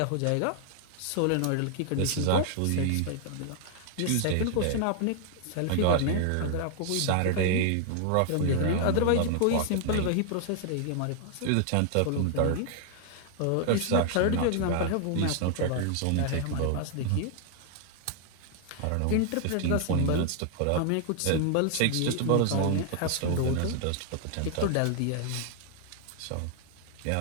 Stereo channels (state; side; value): different; both; correlation 0.00